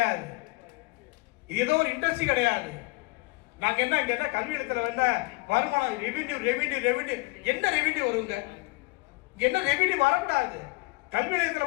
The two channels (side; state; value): right; quieter; 24.4 dB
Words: இது ஏதோ ஒரு இண்டஸ்ட்ரி கிடையாது. நாங்க என்ன இங்க என்ன கல்வி இடத்துல என்ன வருமானம் ரெவென்யூ ரெவென்யூ ரெவென்யூ என்ன ரெவென்யூ வருங்க? என்ன ரெவென்யூ வரக்கூடாது. கல்வி